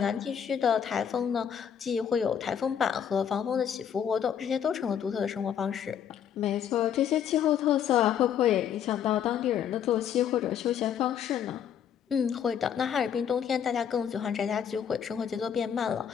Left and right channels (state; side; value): quieter; right; 8.5 dB